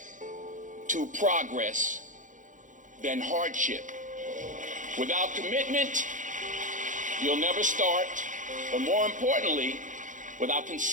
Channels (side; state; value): left; late; 0.37 ms